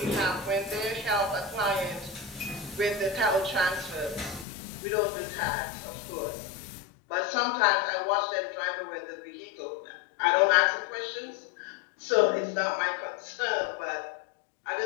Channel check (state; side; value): drops out; right; at 4.5 s